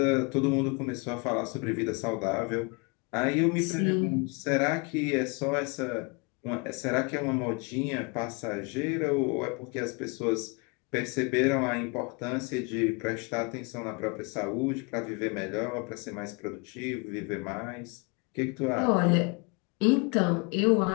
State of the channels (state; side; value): quieter; right; 31.3 dB